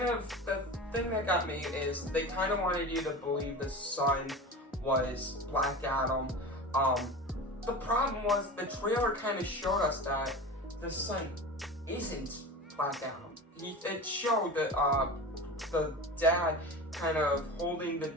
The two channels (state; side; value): normal; both; correlation 0.31